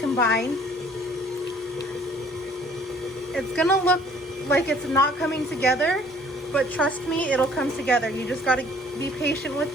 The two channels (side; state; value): both; normal; correlation 0.57